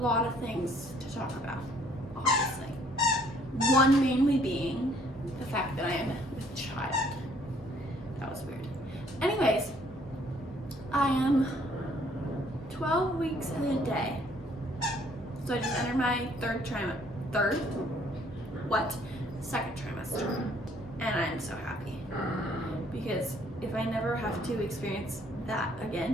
of things to talk about, obviously. One mainly being the fact that I am with child. That was weird. Anyways, I am 12 weeks and a day. So I just entered my second trimester. And I'm so happy. Because if I never have to experience that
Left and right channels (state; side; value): normal; both; correlation 0.63